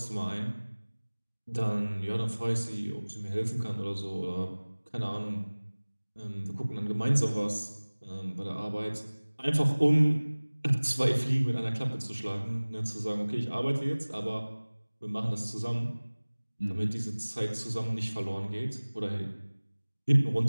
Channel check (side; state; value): both; inverted; correlation -1.00